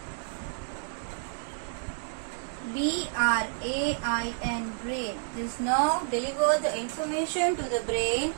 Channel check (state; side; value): silent; left; digital silence